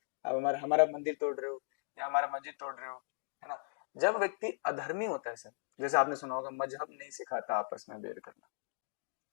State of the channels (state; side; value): silent; right; digital silence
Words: आप हमारा मंदिर तोड़ रहे हो या हमारा मस्जिद तोड़ रहे हो, है ना। जब व्यक्ति अधर्मी होता है सर, जैसे आपने सुना होगा मजहब नहीं सिखाता आपस में बैर करना,